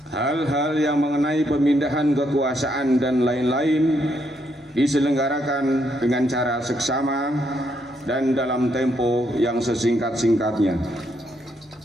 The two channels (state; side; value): normal; both; correlation 0.75